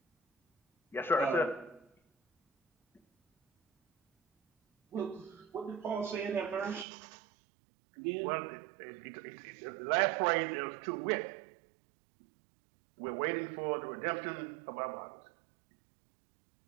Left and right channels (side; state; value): left; drops out; at 6.9 s